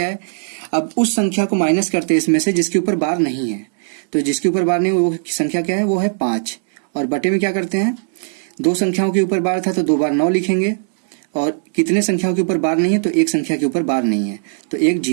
है। अब उस संख्या को माइनस करते हैं इसमें से जिसके ऊपर बार नहीं है। तो जिसके ऊपर बार नहीं, वो संख्या क्या है, वो है 5। और बटे में क्या करते हैं, 2 संख्याओं के ऊपर बार था तो 2 बार 9 लिखेंगे, और कितने संख्याओं के ऊपर बार नहीं है, तो 1 संख्या के ऊपर बार नहीं है तो 1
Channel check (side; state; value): left; silent; digital silence